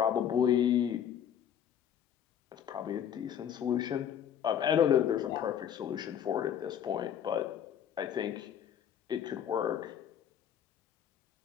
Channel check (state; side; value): quieter; right; 9.3 dB